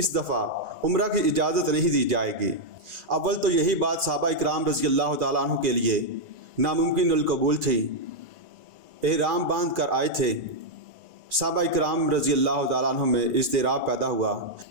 دفعہ عمرہ کی اجازت نہیں دی جائے گی۔ اول تو یہی بات صحابہ اکرام رضی اللہ تعالیٰ عنہ کے لیے ناممکن القبول تھی۔ احرام باندھ کر آئے تھے، صحابہ اکرام رضی اللہ تعالیٰ عنہ میں اضطراب پیدا ہوا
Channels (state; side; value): late; left; 1.9 ms